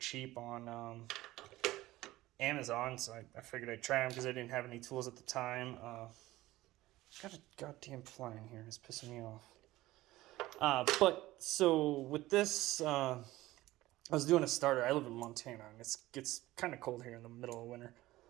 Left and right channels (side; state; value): left; quieter; 17.2 dB